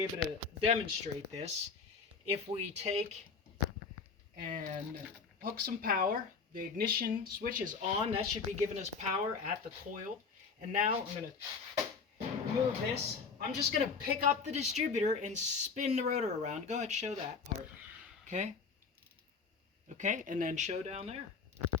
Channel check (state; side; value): quieter; right; 5.2 dB